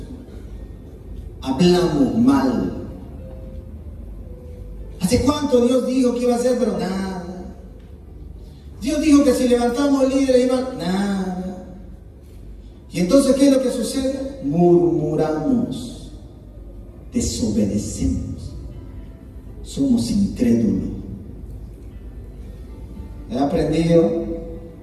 hablamos mal. ¿Hace cuánto Dios dijo que iba a hacer? Pero nada. Dios dijo que si levantamos el líder iba nada. Y entonces, ¿qué es lo que sucede? Murmuramos, desobedecemos, somos incrédulos. He aprendido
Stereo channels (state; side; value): identical; both; correlation 1.00